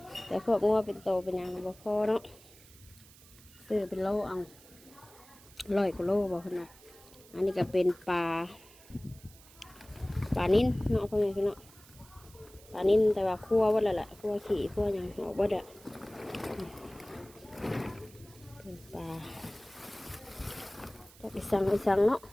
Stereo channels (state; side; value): noise; right; hiss, 23 dB below the sound